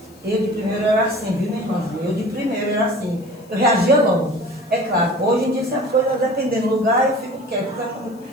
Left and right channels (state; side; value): noise; left; hiss, 29 dB below the sound